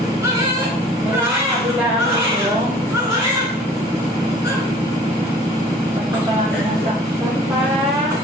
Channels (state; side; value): normal; both; correlation 0.50